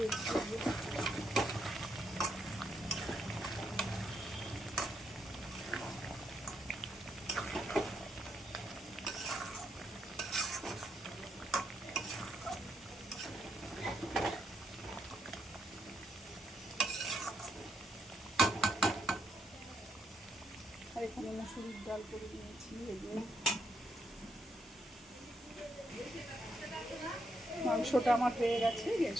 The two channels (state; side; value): normal; both; correlation 0.78